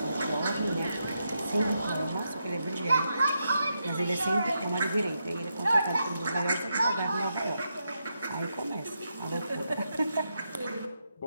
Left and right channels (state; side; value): inverted; both; correlation -0.84